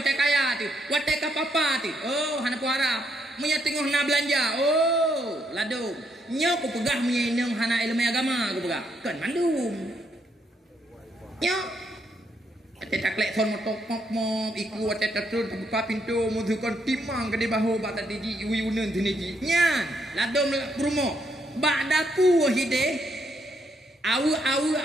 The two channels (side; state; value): both; normal; correlation 0.75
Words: kaya tu wate kapapa tu hana puara punya tengah nak belanja ladung nyo ku pegah punya inang hana ilmu agama ku pegah kan mandum nyo wate taklek son motok mok iku wate tatur buka pintu mudukan timang ke di bahu bak tadi ji uyunen tiniji nyan ladung brumo bak dapu hide Awu